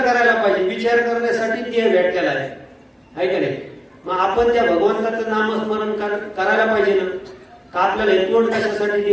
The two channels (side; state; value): both; identical; correlation 1.00